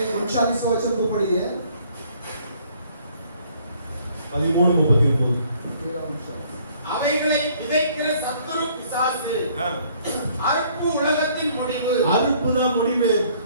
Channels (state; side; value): inverted; both; correlation -0.61